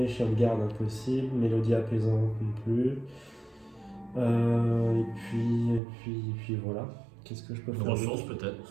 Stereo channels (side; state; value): left; drops out; at 5.8 s